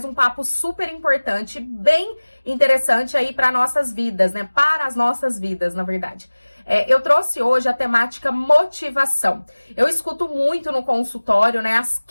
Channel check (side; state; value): both; inverted; correlation -1.00